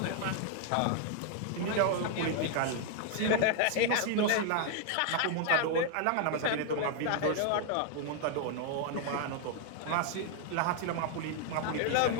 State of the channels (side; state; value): both; different; correlation 0.00